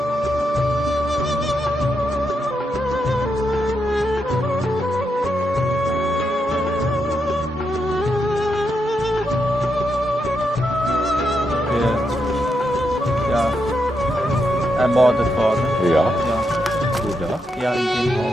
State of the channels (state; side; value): normal; both; correlation 0.82